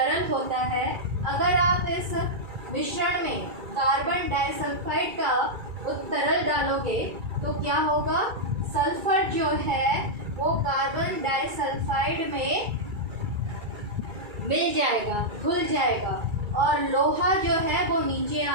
होता है। अगर आप इस मिश्रण में कार्बन डाइसल्फाइड का तरल डालोगे तो क्या होगा, सल्फर जो है वो कार्बन डाइसल्फाइड में मिल जाएगा, घुल जाएगा और लोहा जो है वो नीचे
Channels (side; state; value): left; late; 2.3 ms